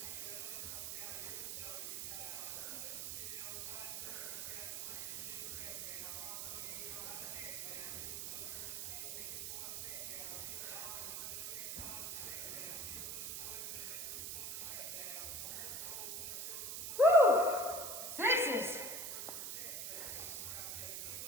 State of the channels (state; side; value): noise; right; hiss, 4 dB below the sound